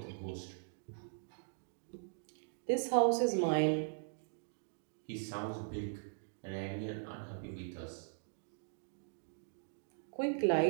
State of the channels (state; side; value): silent; left; digital silence